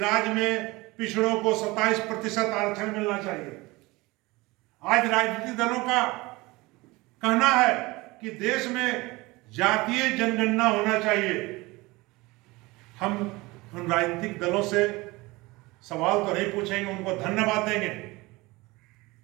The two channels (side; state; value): left; quieter; 22.2 dB